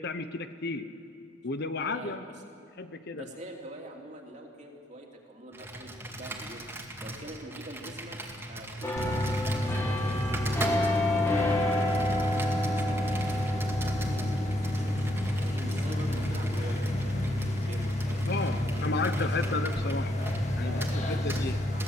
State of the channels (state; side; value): normal; both; correlation 0.75